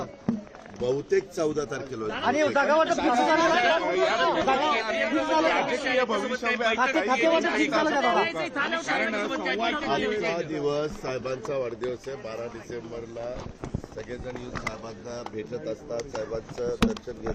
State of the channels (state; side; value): identical; both; correlation 1.00